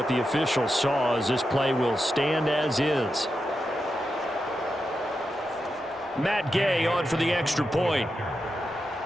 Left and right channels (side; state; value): both; normal; correlation 0.88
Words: the official saw, as this play will stand as is. Matt Gay on for the extra point.